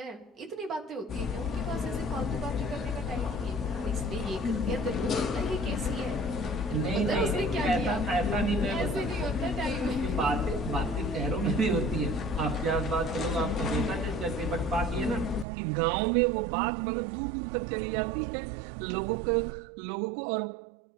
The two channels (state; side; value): drops out; left; at 15.5 s